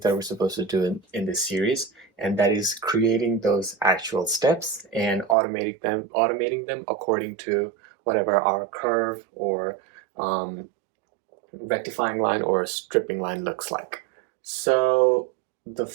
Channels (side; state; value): left; drops out; at 5.4 s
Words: that we're supposed to do in this series, and that is creating those actual steps and automating them according to whatever our curve or um, rectifying line or stripping line looks like. So the